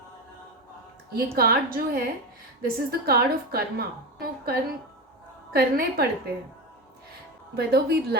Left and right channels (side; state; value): both; normal; correlation 0.21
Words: ये कार्ड जो है, this is the card of karma. तो कर्म करने पड़ते हैं, वेदर वी